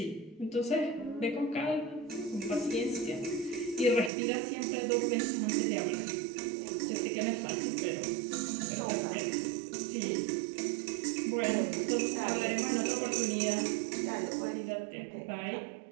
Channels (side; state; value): left; drops out; at 4.1 s